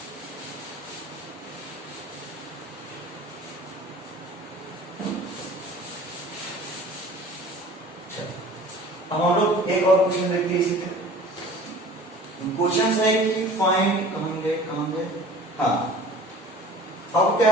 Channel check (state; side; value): normal; both; correlation 0.44